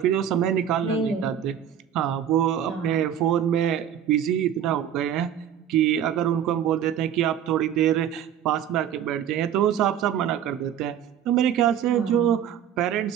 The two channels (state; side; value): quieter; left; 9.6 dB